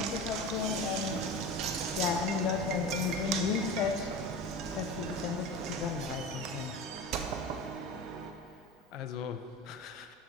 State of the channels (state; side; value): normal; both; correlation 0.31